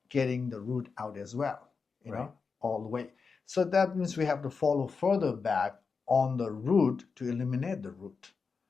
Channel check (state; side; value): quieter; right; 5.1 dB